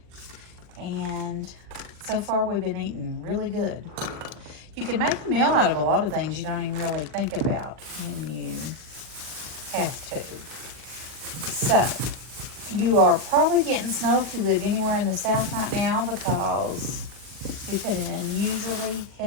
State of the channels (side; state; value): left; late; 40 ms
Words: and so far we've been eating really good. You can make a meal out of a lot of things you don't even really think about when you have to. So, you are probably getting snow if you live anywhere in the south right now because we've had an unusually